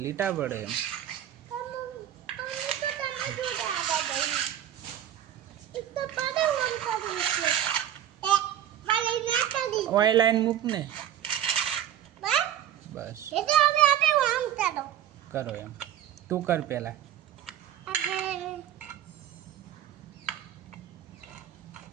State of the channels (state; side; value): quieter; left; 10.9 dB